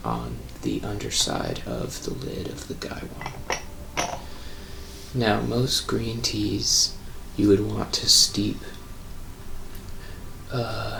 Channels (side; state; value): both; identical; correlation 1.00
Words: on the underside of the lid of the gaiwan. Now, most green teas you would want to steep